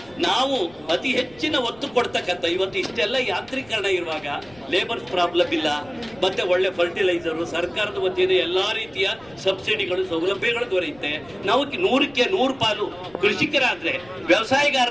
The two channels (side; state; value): left; noise; rumble, 26 dB below the sound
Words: ನಾವು ಅತಿ ಹೆಚ್ಚಿನ ಒತ್ತು ಕೊಡ್ತಕ್ಕಂಥ ಇವತ್ತು ಇಷ್ಟೆಲ್ಲ ಯಾಂತ್ರೀಕರಣ ಇರುವಾಗ ಲೇಬರ್ಸ್ ಪ್ರಾಬ್ಲಮ್ ಇಲ್ಲ, ಮತ್ತೆ ಒಳ್ಳೆ ಫರ್ಟಿಲೈಸರು, ಸರ್ಕಾರದ ವತಿಯಿಂದ ಎಲ್ಲಾ ರೀತಿಯ ಸಬ್ಸಿಡಿಗಳು ಸೌಲಭ್ಯಗಳು ದೊರೆಯುತ್ತೆ. ನಾವು 100ಕ್ಕೆ 100 ಪಾಲು ಕೃಷಿಕರಾದ್ರೆ